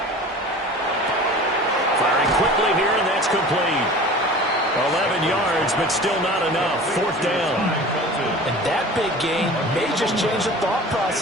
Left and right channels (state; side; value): normal; both; correlation 0.40